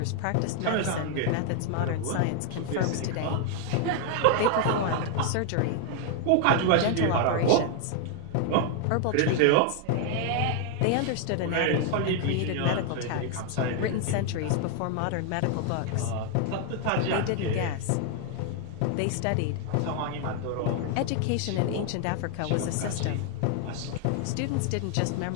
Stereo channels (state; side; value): different; both; correlation 0.00